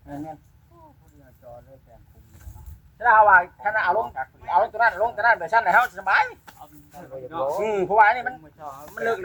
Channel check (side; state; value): both; identical; correlation 1.00